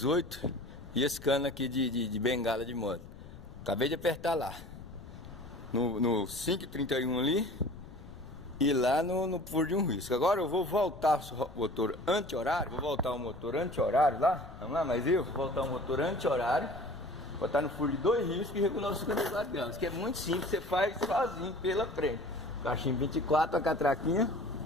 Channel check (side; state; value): left; noise; rumble, 15 dB below the sound